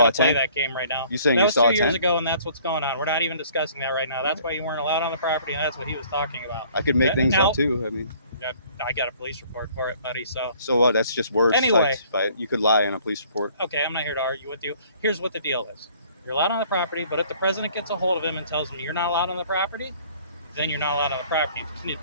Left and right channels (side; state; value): both; inverted; correlation -0.56